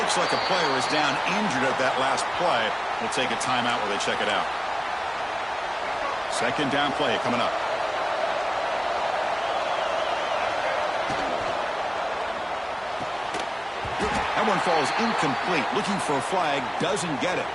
Looks like a player is down injured at that last play. We'll take a timeout while they check it out. Second down play coming up. That one falls incomplete. Looking for a flag. Doesn't get it.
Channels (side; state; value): both; identical; correlation 1.00